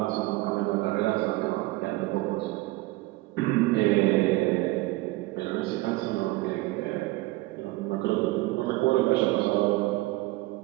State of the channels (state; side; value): quieter; left; 19.9 dB